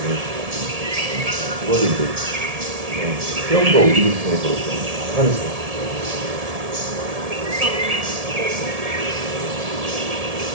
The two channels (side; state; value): left; late; 1.7 ms